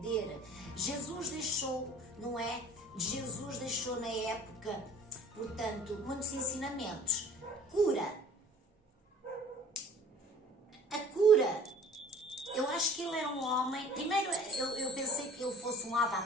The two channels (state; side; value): normal; both; correlation 0.50